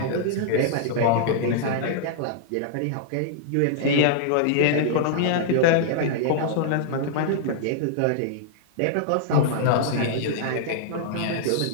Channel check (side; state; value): both; different; correlation -0.01